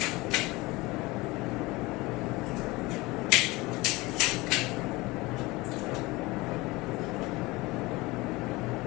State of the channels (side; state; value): right; quieter; 22.0 dB